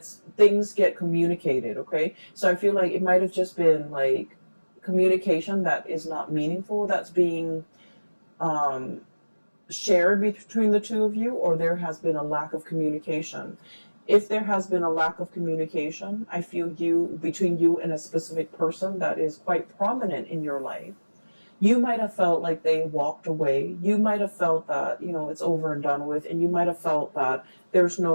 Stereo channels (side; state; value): both; inverted; correlation -1.00